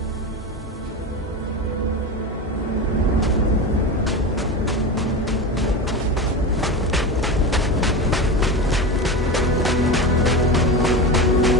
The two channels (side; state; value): both; normal; correlation 0.23